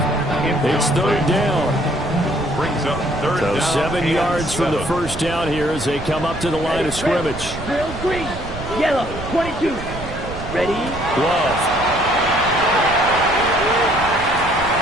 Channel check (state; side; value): noise; right; rumble, 10 dB below the sound